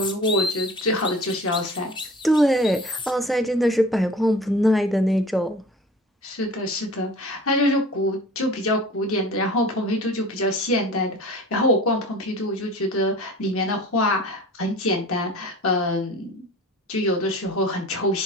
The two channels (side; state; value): both; normal; correlation 0.42